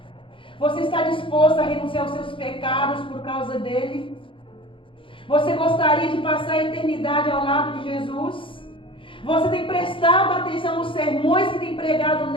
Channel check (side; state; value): right; late; 0.25 ms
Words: Você está disposto a renunciar aos seus pecados por causa dele? Você gostaria de passar a eternidade ao lado de Jesus? Você tem prestado atenção nos sermões que tem pregado